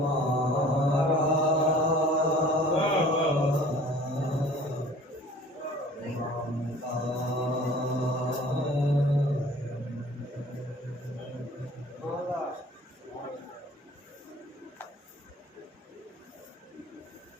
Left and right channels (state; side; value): normal; both; correlation 0.48